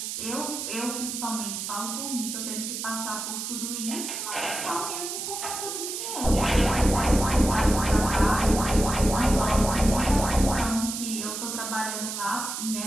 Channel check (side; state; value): right; noise; hiss, 5 dB below the sound